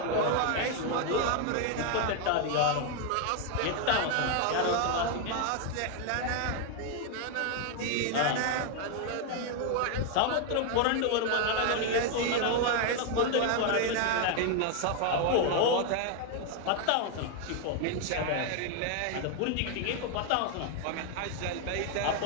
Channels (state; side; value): different; both; correlation 0.00